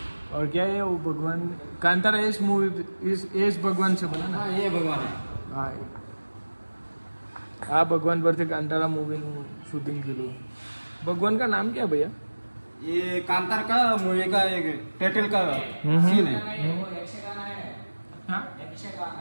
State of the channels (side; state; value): both; inverted; correlation -1.00